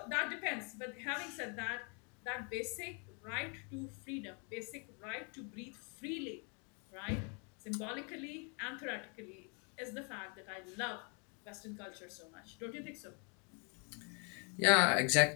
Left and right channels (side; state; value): right; quieter; 36.4 dB